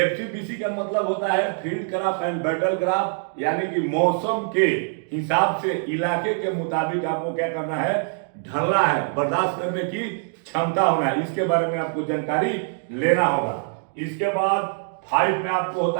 का मतलब होता है field craft and battle craft यानी कि मौसम के हिसाब से इलाके के मुताबिक आपको क्या करना है, ढलना है, बर्दाश्त करने की क्षमता होना है। इसके बारे में आपको जानकारी लेना होगा। इसके बाद 5 में आपको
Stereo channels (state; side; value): silent; left; digital silence